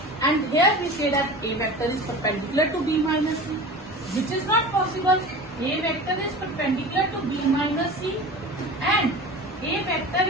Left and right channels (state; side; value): normal; both; correlation 0.35